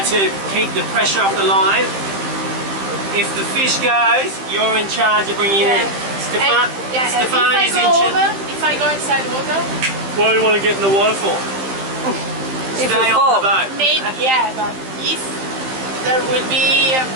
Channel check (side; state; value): left; late; 15 ms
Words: to keep the pressure off the line. If the fish goes, you're in charge of bringing it in. Stefania's in charge. If I go inside the water? What do you want to get in the water for? Stay on the boat. Maybe, yeah, but if there will be a